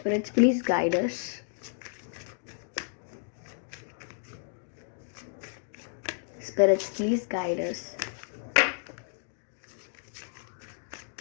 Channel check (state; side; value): silent; right; digital silence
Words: please guide us. Spirits, please guide us.